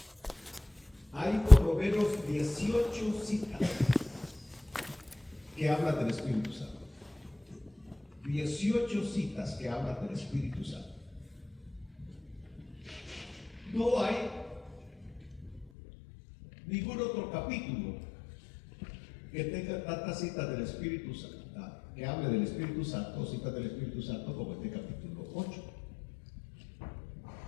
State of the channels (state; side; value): drops out; right; at 15.7 s